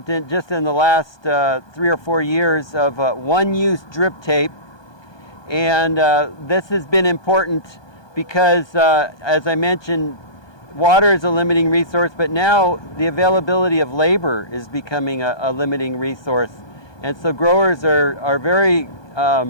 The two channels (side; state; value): right; late; 1.2 ms